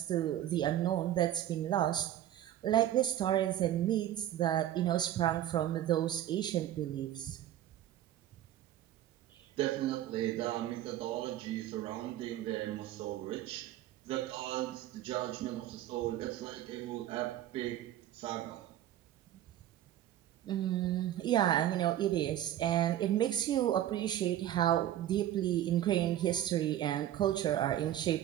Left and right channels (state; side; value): quieter; left; 12.3 dB